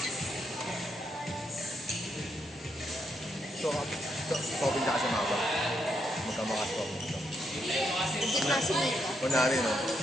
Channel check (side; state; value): both; normal; correlation 0.79